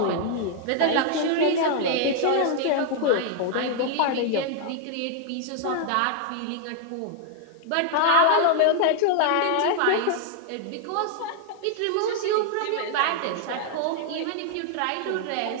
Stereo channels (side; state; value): both; different; correlation 0.00